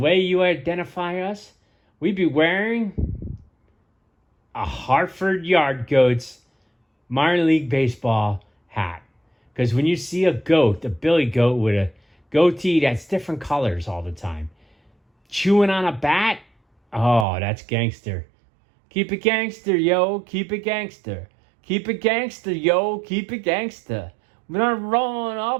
you identify us, we'd be wearing a Hartford Yard Goats minor league baseball hat. Because when you see a goat, a billy goat with a goatee that's different colors all the time, chewing on a bat, oh, that's gangster. Keep it gangster, yo. Keep it gangster. Keep it gangster, yo. Keep it gangster. When I'm rolling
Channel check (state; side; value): drops out; left; at 17.2 s